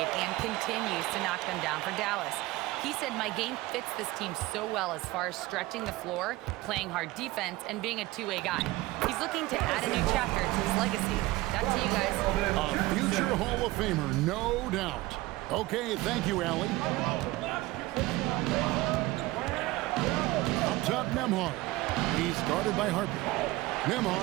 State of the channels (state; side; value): quieter; left; 19.2 dB